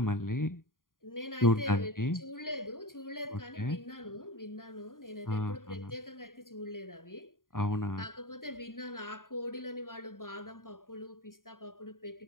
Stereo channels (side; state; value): right; late; 0.90 ms